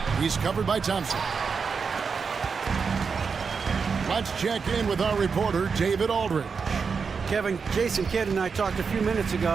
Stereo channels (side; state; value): left; quieter; 5.5 dB